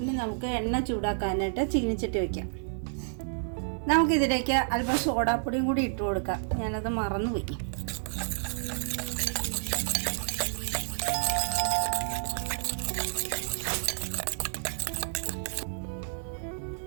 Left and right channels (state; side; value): silent; left; digital silence